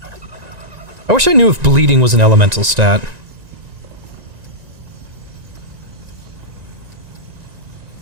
I wish I knew if bleeding was an elemental stat.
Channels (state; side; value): late; left; 1.9 ms